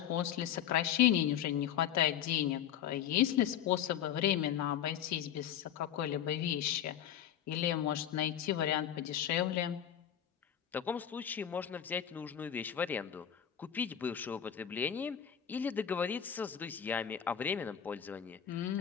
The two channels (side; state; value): right; quieter; 9.7 dB